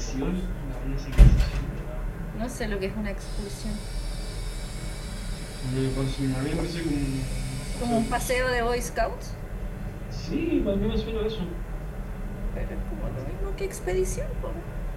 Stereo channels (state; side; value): identical; both; correlation 1.00